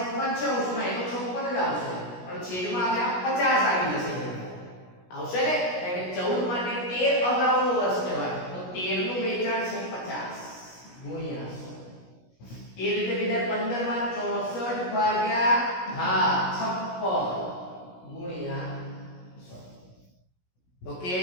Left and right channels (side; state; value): right; late; 17 ms